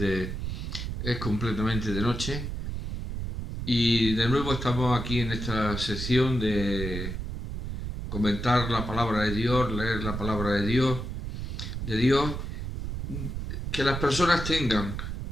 completamente de noche. Y de nuevo estamos aquí en esta sección de comentar la palabra de Dios, leer la palabra de Dios, que las personas tengan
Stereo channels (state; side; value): noise; right; rumble, 5 dB below the sound